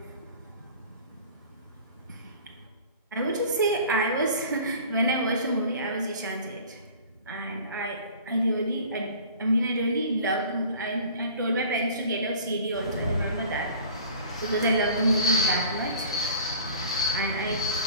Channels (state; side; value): inverted; both; correlation -0.45